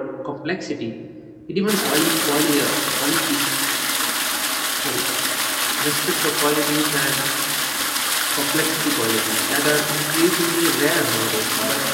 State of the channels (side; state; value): both; identical; correlation 1.00